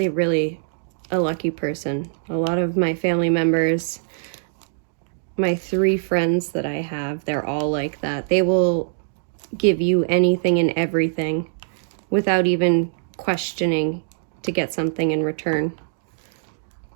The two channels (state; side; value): silent; left; digital silence